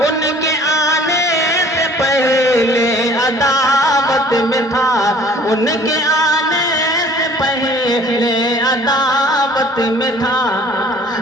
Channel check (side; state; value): both; normal; correlation 0.52